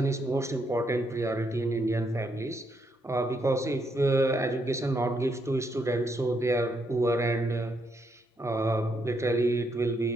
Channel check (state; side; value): normal; both; correlation 0.77